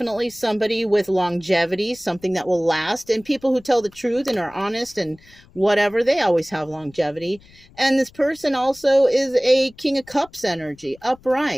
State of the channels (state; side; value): noise; left; rumble, 26 dB below the sound